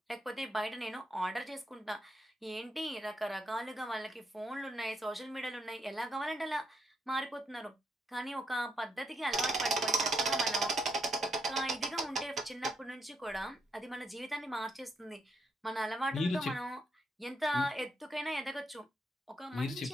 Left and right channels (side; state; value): both; normal; correlation 0.78